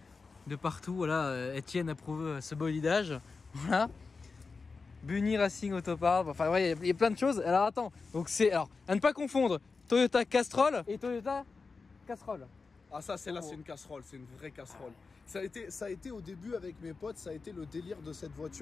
partout. Voilà, Etienne approuve ce bolidage. Voilà. Bunny Racing Autopart. Enfin, ouais, il y a plein de choses. Alors, attends. Donc, c'est. Alors, à ne pas confondre Toyota Castrol et Toyota Casserole. Ah, ça, c'est une casserole. C'est une vraie casserole. Ça a été au début avec mes potes, ça a été le délire de cette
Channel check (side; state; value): right; quieter; 4.4 dB